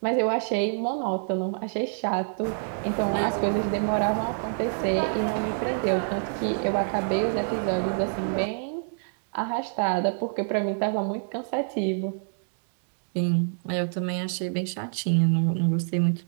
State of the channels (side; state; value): left; silent; digital silence